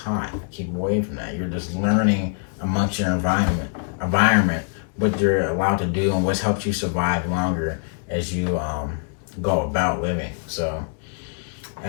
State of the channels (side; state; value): right; silent; 58 dB below the other